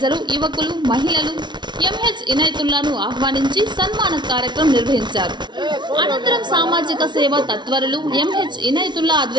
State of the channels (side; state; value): left; late; 0.22 ms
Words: యువకులు, మహిళలు ఎంహెచ్ ఇనైతుల్లాను ఆహ్వానించి సన్మాన కార్యక్రమం నిర్వహించారు. అనంతరం సామాజిక సేవా తత్వరులు ఎంహెచ్ ఇనైతుల్లా